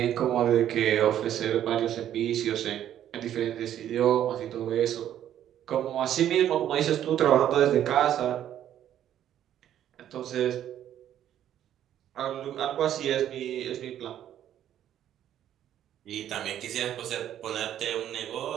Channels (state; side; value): quieter; left; 11.0 dB